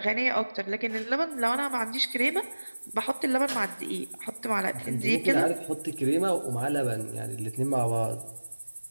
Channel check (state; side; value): inverted; both; correlation -1.00